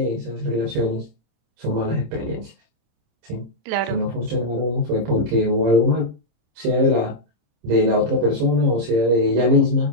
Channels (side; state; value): left; late; 26 ms